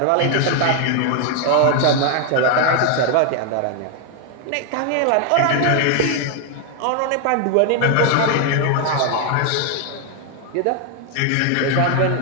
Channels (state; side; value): different; both; correlation 0.00